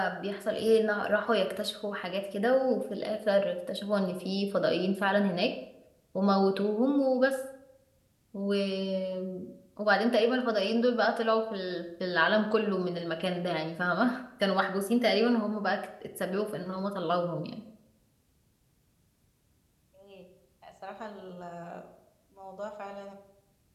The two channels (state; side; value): identical; both; correlation 1.00